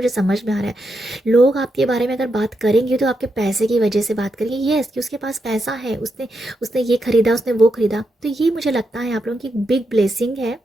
समझ में आ रहा है। लोग आपके बारे में अगर बात करेंगे तो आपके पैसे की वजह से बात करेंगे, यस कि उसके पास पैसा है, उसने उसने ये खरीदा, उसने वो खरीदा। तो ये मुझे लगता है आप लोगों की बिग ब्लेसिंग है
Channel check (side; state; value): both; normal; correlation 0.83